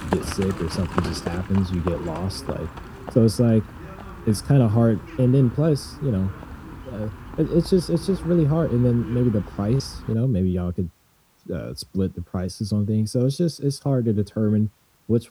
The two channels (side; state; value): both; identical; correlation 1.00